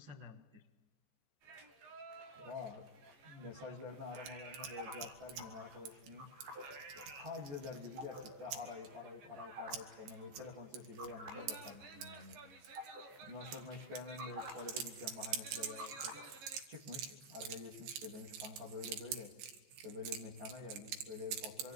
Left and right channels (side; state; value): left; late; 14 ms